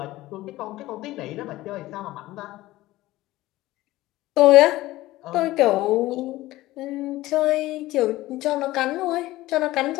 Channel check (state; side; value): quieter; right; 17.2 dB